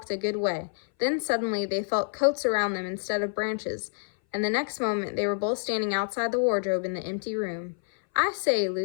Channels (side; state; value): right; silent; 58 dB below the other